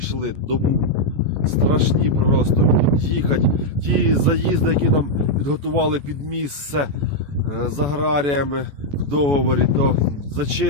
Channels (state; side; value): late; left; 14 ms